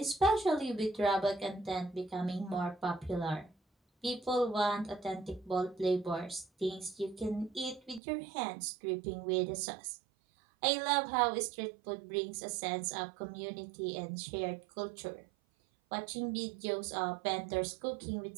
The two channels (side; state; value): left; drops out; at 8.0 s